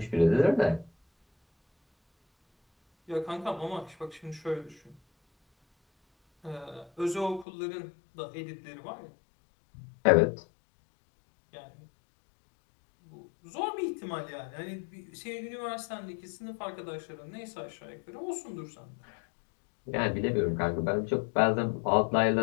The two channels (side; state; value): right; drops out; at 7.5 s